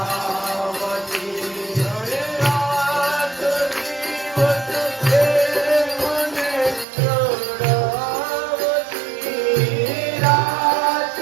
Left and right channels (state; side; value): drops out; left; at 6.9 s